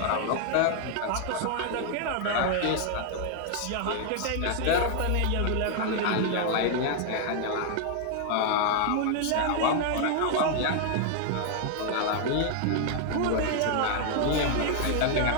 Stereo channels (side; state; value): both; different; correlation 0.00